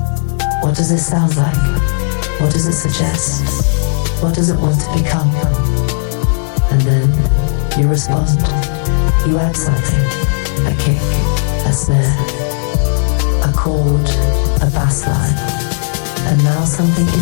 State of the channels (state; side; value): silent; right; digital silence